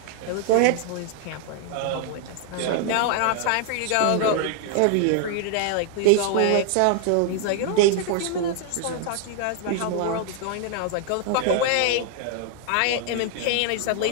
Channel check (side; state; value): both; different; correlation 0.00